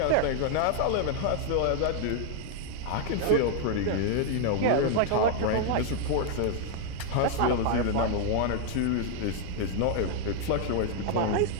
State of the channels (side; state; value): both; different; correlation 0.00